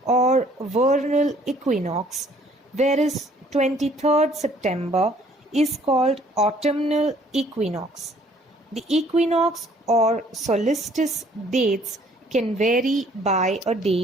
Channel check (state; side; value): normal; both; correlation 0.59